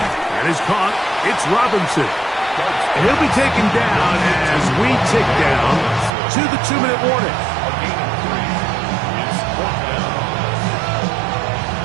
And is caught, it's Robinson. And he'll be taken down as we tick down to the 2-minute warning.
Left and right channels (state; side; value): drops out; left; at 6.1 s